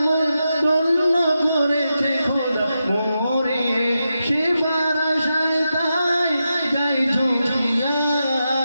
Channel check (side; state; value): both; inverted; correlation -0.88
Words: মন ধন্য করেছে খোদা মোরে। সেবার আশায় তাই যাই ঝুঁকিয়া।